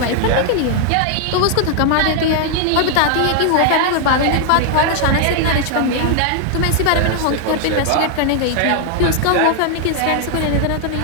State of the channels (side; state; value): both; different; correlation 0.00